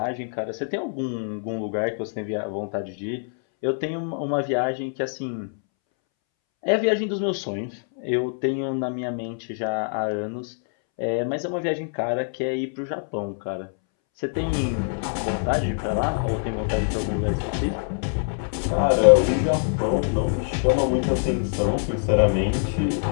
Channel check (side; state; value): right; silent; 62 dB below the other